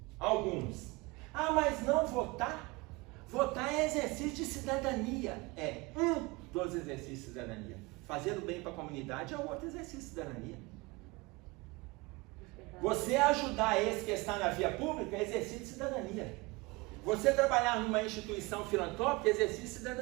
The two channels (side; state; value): left; quieter; 23.9 dB